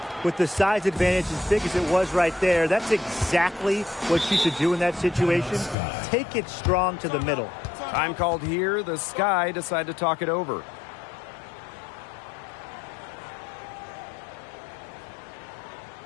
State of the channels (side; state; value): right; drops out; at 5.8 s